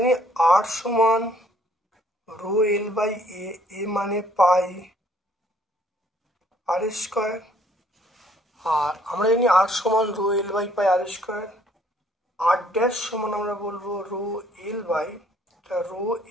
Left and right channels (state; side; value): normal; both; correlation 0.62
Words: r সমান রো এল বাই এ মানে পাই আর স্কোয়ার, আর আমরা জানি r সমান rho L by pi r square, r dash সমান আমরা বলবো রো